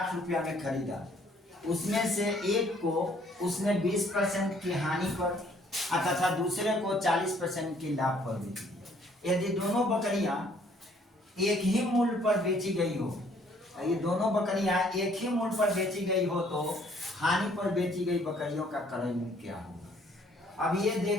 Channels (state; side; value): normal; both; correlation 0.62